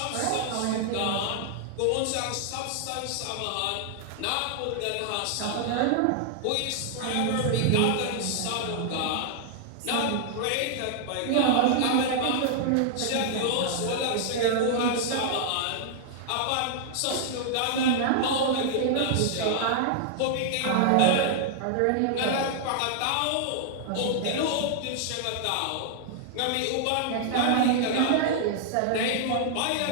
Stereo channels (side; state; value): both; different; correlation -0.01